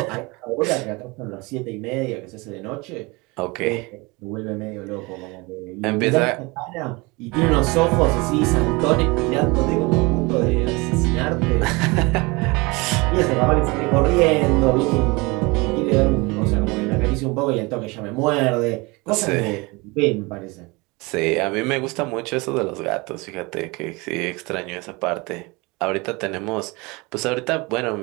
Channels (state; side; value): quieter; left; 25.6 dB